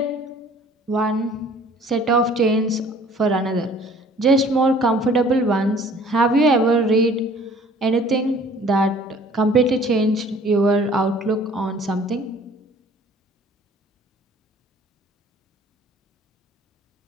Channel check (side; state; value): both; normal; correlation 0.53